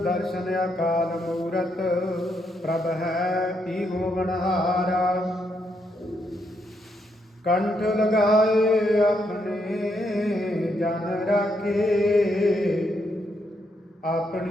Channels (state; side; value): normal; both; correlation 0.77